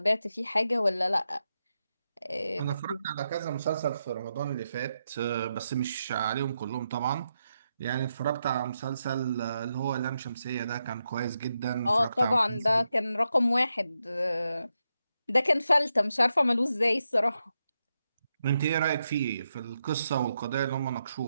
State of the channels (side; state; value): both; inverted; correlation -0.85